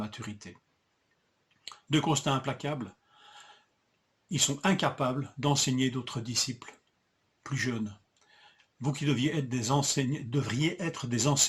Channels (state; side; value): identical; both; correlation 1.00